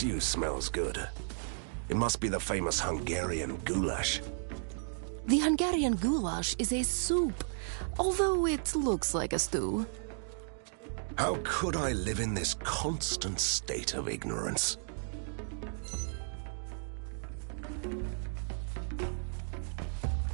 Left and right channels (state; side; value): silent; left; digital silence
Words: smells good. It must be the famous Hungarian goulash. The Hungarian goulash is a soup, although it looks like a stew. How could I live in this constant state of ignorance?